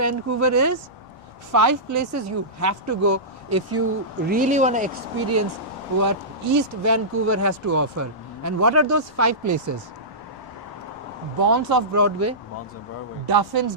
is? 5 places you have to go if you really want to experience what East Vancouver has to offer. And what are those 5 places? Bonds of Broadway, Duffin's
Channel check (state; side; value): normal; both; correlation -0.17